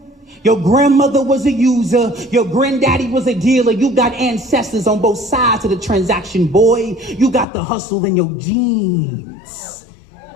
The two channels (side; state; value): right; drops out; at 7.5 s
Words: Your grandmother was a user. Your granddaddy was a dealer. You got ancestors on both sides of the transaction, boy. You got the hustle in your genes.